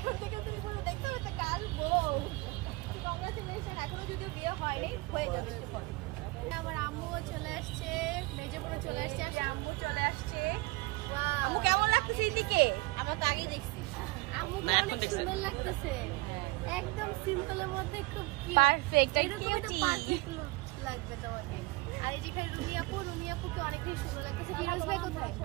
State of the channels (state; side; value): quieter; left; 23.1 dB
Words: থেকে তুমি বলো দেখতে হবে একটা কাল বউ। কংগ্রাচুলেশন, এখনো যদিও বিয়ে হয়নি, হয়ে যাবে একটু পরে। আমার আম্মুও চলে আসছে, মেজপুরে চলে আসছে, আর আম্মু চলে আসছে। Wow. আম্মু কেমন লাগতেছে এদিকে? আমরা তো আগেই দেখছি। আম্মুকে অনেক সুন্দর লাগতেছে, একদম সিম্পলের মধ্যে খুব Perfect, এরকম একটা cutie. পারফেক্ট লুক লাগবে তোমাকে। আর এই যেখানে রুমি আপুকে অনেক বেশি সুন্দর লাগতেছে। ফিরোজ ভাই কোথায়?